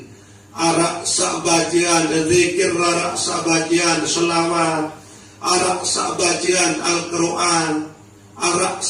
Arak sabajian zikir, arak sabajian selawat, arak sabajian Al-Quran, arak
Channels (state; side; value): identical; both; correlation 1.00